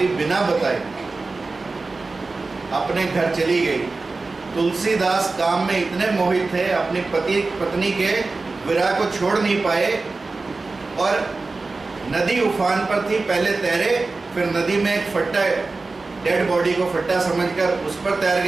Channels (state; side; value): quieter; left; 3.7 dB